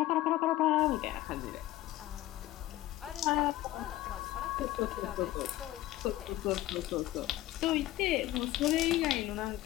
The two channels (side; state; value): right; quieter; 15.8 dB